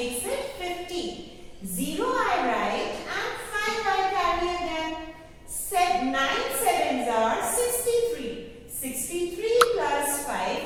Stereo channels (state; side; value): identical; both; correlation 1.00